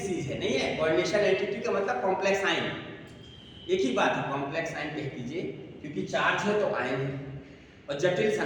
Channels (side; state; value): both; identical; correlation 1.00